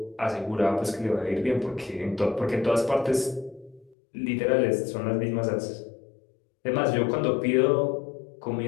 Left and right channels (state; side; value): drops out; right; at 4.0 s